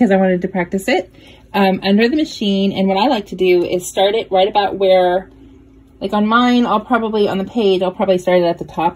I wanted to practice it, under the machine. And what I like to do is start it right about where, like on mine, on the page, I'll probably start it at the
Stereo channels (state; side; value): identical; both; correlation 1.00